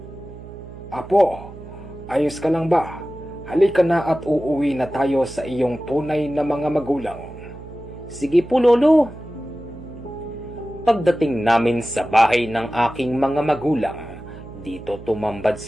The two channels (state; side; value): noise; right; hum, 15 dB below the sound